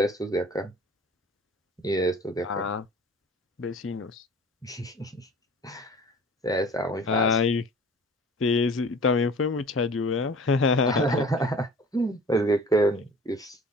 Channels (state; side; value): normal; both; correlation 0.45